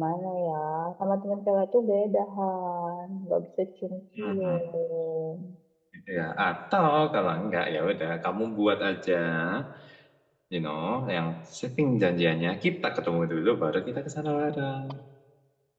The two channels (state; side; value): identical; both; correlation 1.00